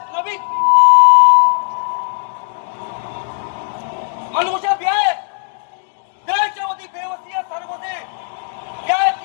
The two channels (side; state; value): right; silent; digital silence